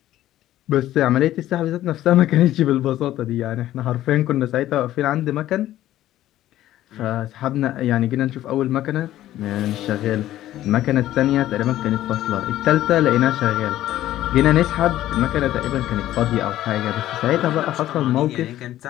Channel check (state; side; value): quieter; right; 13.7 dB